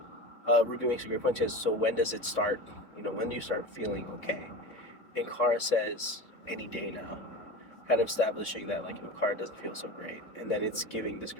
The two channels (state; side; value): late; right; 3.6 ms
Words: Ruby makes a great point. She says, so when does it start? When do you start feeling okay? And Kara says, any day now, kind of establishing that like Kara doesn't feel so great, and then it's giving this